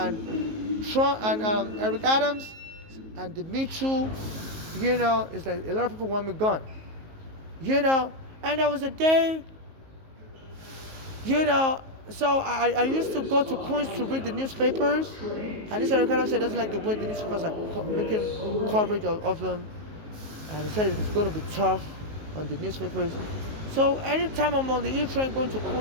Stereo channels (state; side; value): late; left; 19 ms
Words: Trump and Eric Adams and the Me Too, it's like a lot of people want me gone. And there was a day, so I used to go to Queens to read the newspapers, and this Eric Adams said he doesn't like the way the newspapers are making coverage of them, and he said it's going to be tough on the newspapers. So anytime I'm on the E train going to